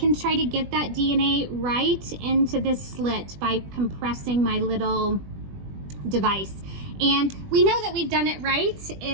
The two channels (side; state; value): left; late; 20 ms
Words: try to get that DNA right into this slit by compressing my little device. And we know that we've done it right